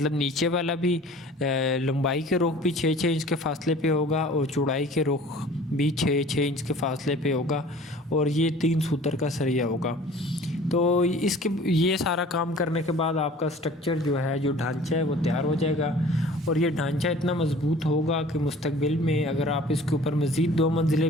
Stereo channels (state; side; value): normal; both; correlation 0.47